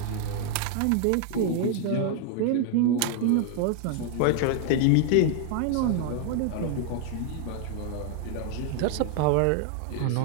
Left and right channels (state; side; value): different; both; correlation 0.00